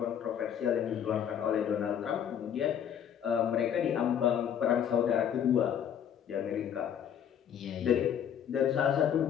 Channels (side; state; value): right; quieter; 9.0 dB